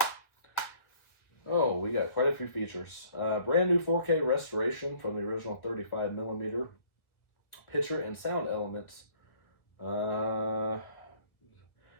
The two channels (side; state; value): right; late; 1.4 ms